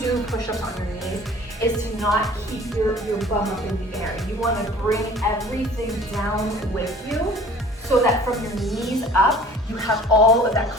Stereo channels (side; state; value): both; normal; correlation 0.48